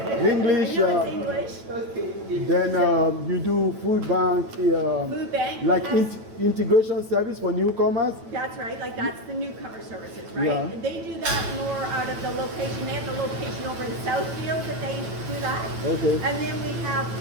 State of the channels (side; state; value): left; late; 9.1 ms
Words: do. English. I know it's English. Then you do food bank. Food bank. Like integration service for newcomers. That's right. Like that's the newcomer services, right? Yeah. And they do that more out of the location. They have the location over in Southfield that they do that. Okay. And then we have